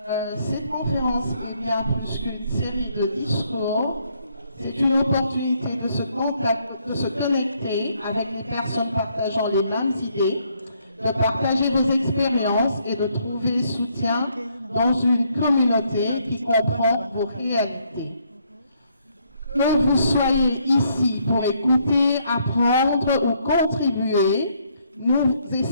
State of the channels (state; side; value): inverted; both; correlation -0.71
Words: cette conférence est bien plus qu'une série de discours. C'est une opportunité de se connecter avec les personnes partageant les mêmes idées, de partager vos expériences et de trouver soutien dans une communauté qui comprend vos réalités. Que vous soyez ici pour écouter, apprendre ou contribuer, nous